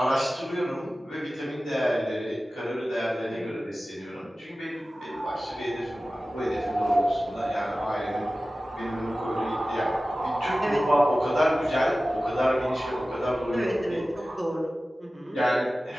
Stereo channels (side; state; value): both; normal; correlation 0.96